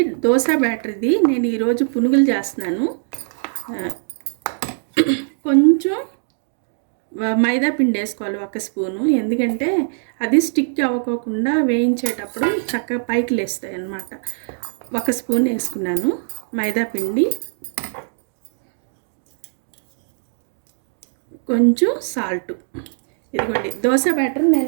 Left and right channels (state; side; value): silent; left; digital silence